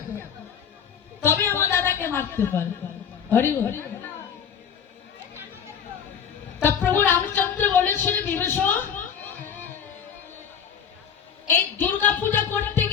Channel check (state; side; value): quieter; right; 7.7 dB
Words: তবে আমার দাদাকে মারতে পারবে। হরি হরি। তা প্রভু রামচন্দ্র বলেছিল বিভীষণ এই দুর্গা পূজা করতে